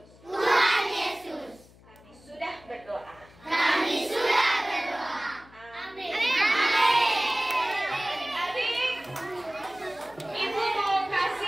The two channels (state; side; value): noise; left; hum, 25 dB below the sound